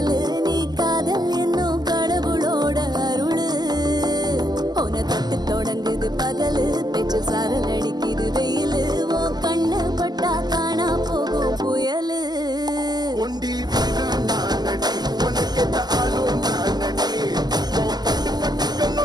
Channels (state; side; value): late; left; 0.20 ms